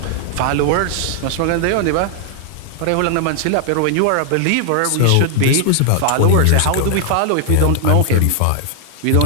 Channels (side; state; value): both; different; correlation 0.00